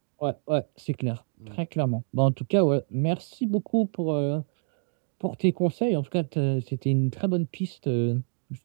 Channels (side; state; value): left; silent; 60 dB below the other